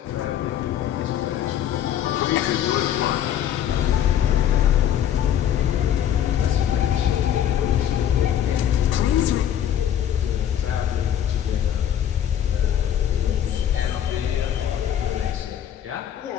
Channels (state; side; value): quieter; right; 10.2 dB